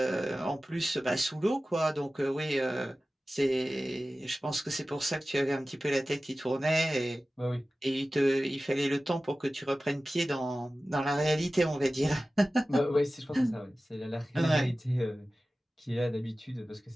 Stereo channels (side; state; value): both; normal; correlation 0.96